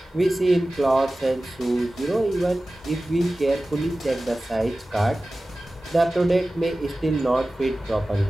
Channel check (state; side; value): normal; both; correlation 0.96